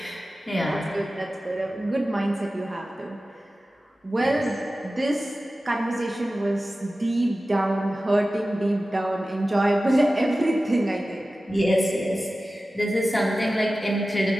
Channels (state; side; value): normal; both; correlation 0.95